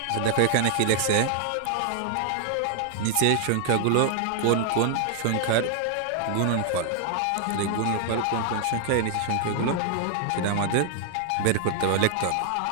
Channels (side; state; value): both; different; correlation 0.00